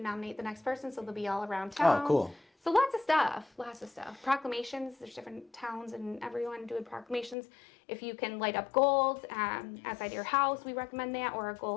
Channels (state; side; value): drops out; right; at 7.4 s